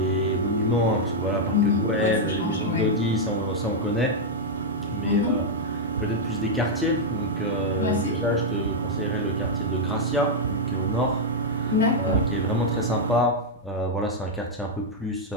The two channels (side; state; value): both; normal; correlation -0.03